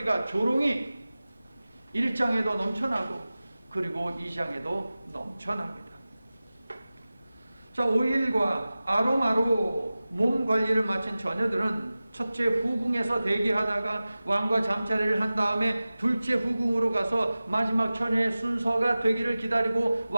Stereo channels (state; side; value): inverted; both; correlation -0.97